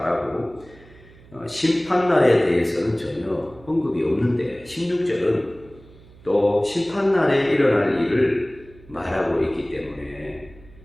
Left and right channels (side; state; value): right; noise; hum, 23 dB below the sound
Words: 심판날에 대해서는 전혀 언급이 없는데 16절은 또 심판날에 일어날 일을 말하고 있기 때문에